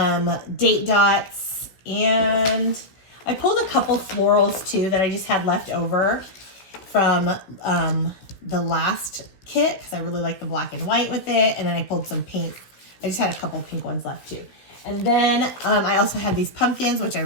date dots, and I pulled a couple florals too that I just had left over from the last kit because I really like the black and white with it, and then I pulled some pink. I just had a couple pink ones left too. And then I also had these pumpkins, which I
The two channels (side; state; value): right; late; 15 ms